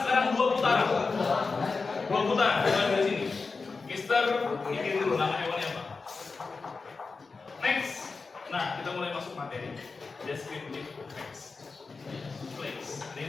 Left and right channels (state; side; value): quieter; right; 4.3 dB